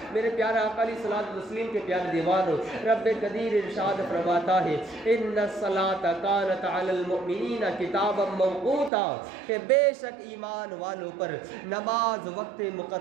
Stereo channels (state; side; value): drops out; left; at 8.9 s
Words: میرے پیارے آقا علیہ الصلوۃ والتسلیم کے پیارے دیوانوں، رب قدیر ارشاد فرماتا ہے ان الصلاۃ کانت علی المؤمنین کتابا موقوتا، کہ بے شک ایمان والوں پر نماز وقت